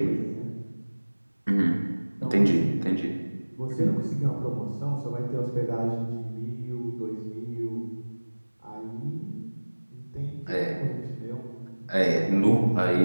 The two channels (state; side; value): inverted; both; correlation -1.00